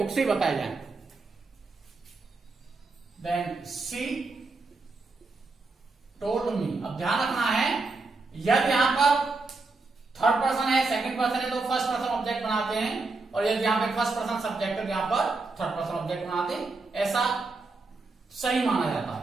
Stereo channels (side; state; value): left; quieter; 3.7 dB